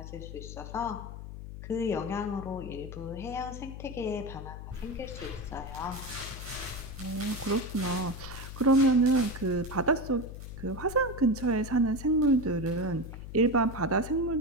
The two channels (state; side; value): noise; left; hum, 10 dB below the sound